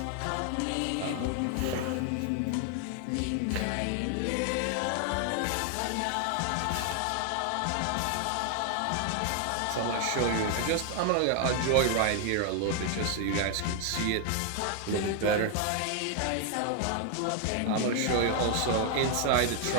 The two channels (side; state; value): both; different; correlation 0.00